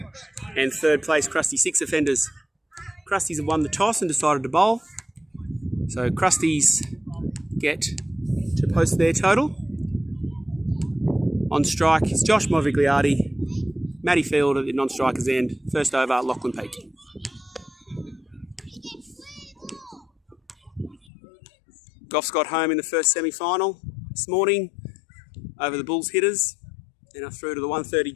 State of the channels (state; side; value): drops out; right; at 21.1 s